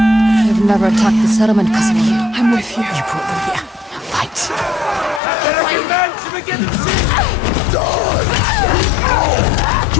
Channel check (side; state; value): right; drops out; at 5.2 s